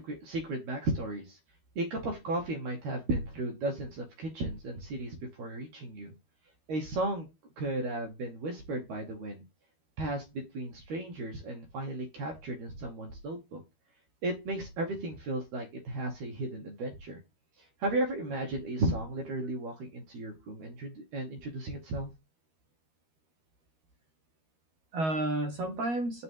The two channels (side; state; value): left; late; 13 ms